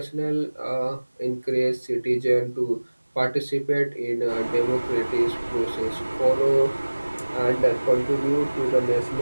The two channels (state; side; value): inverted; both; correlation -1.00